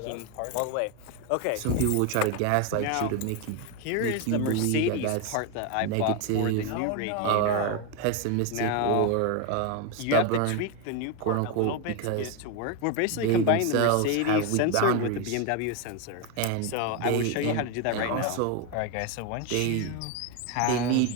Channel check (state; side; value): different; both; correlation 0.02